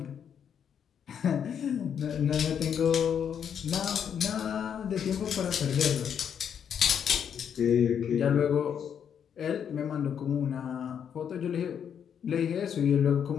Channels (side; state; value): right; quieter; 8.1 dB